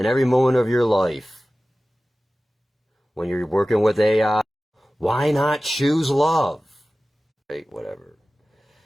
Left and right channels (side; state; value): both; normal; correlation 0.96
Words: every moment of your life? When you're working with AI, Why not choose love? Right, whatever.